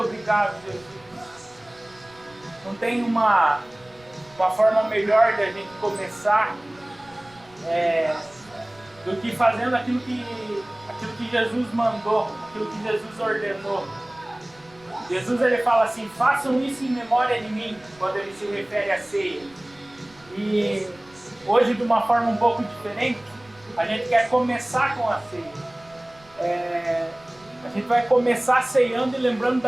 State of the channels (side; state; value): right; noise; rumble, 28 dB below the sound